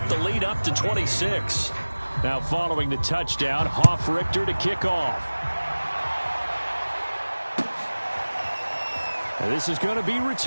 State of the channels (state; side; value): inverted; both; correlation -1.00